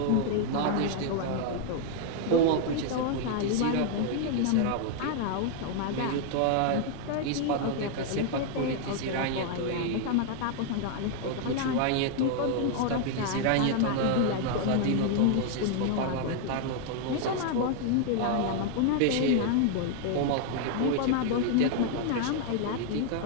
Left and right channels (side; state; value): both; different; correlation 0.00